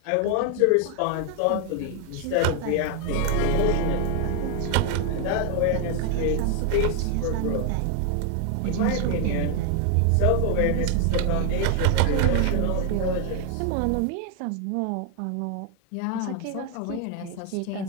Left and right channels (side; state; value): both; different; correlation 0.01